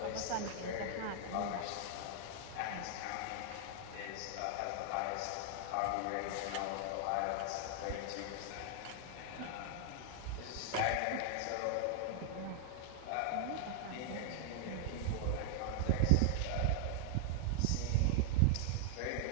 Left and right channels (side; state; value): both; different; correlation 0.00